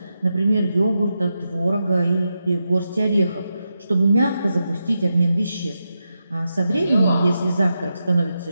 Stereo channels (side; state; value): both; inverted; correlation -0.87